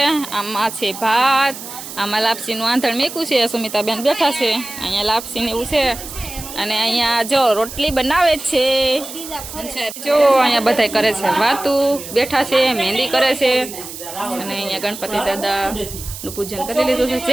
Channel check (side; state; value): right; noise; hiss, 11 dB below the sound